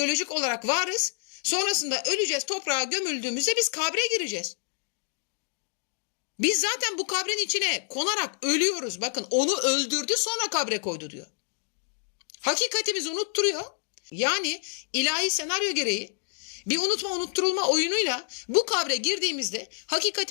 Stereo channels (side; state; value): right; silent; digital silence